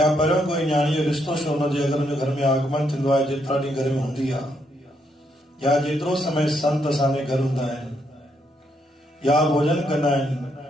पर कोई न्याणी जो रिश्तो छो न जे अगर उन घर में आगमन थींदो आहे जेतिरा ॾींहं घर में हूंदी आहे या जेतिरो समय संत असांजे घर हूंदा आहिनि या भोजन कंदा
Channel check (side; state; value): both; normal; correlation 0.76